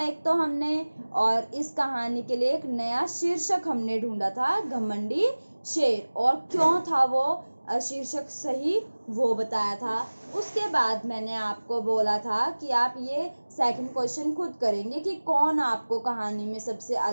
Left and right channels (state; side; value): inverted; both; correlation -1.00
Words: एक तो हमने, और इस कहानी के लिए एक नया शीर्षक हमने ढूंढा था, घमंडी शेर। और क्यों था वो शीर्षक सही वो बताया था। उसके बाद मैंने आपको बोला था कि आप ये सेकंड क्वेश्चन खुद करेंगे कि कौन आपको कहानी में सबसे